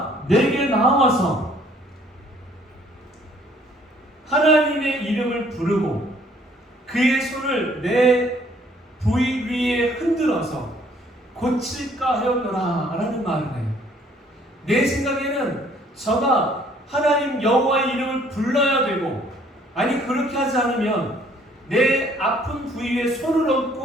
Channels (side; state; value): both; normal; correlation 0.60